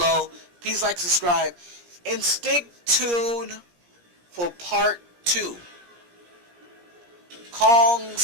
please like, subscribe, and stick tuned for part 2.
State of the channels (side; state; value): left; late; 17 ms